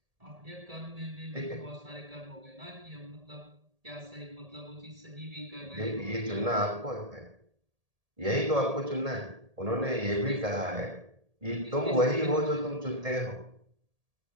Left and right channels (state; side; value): late; left; 1.8 ms